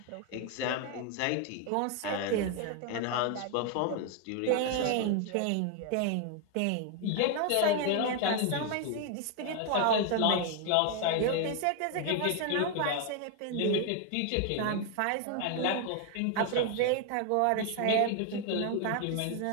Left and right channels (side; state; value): both; different; correlation 0.01